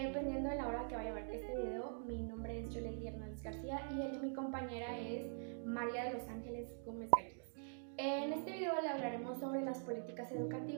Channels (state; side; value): silent; left; digital silence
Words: de la hora que vaya a ver este video, mi nombre es Yoleli Hernández García y mi compañera es María de los Ángeles Gómez Gallegos. En este video le hablaremos sobre las políticas